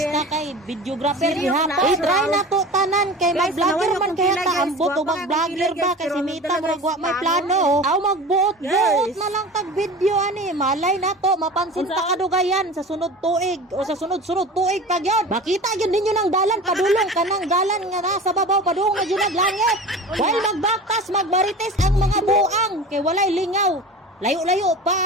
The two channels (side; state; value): both; normal; correlation 0.35